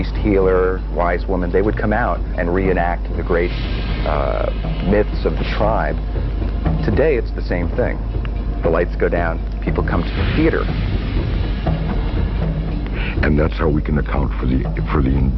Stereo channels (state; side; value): identical; both; correlation 1.00